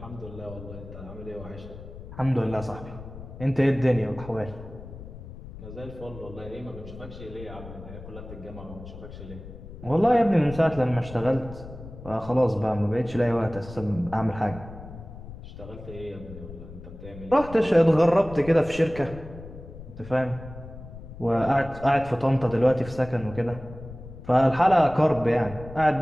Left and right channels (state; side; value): noise; left; rumble, 14 dB below the sound